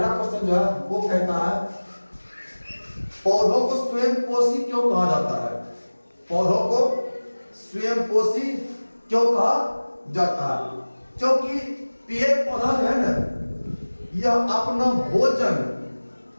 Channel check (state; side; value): inverted; both; correlation -1.00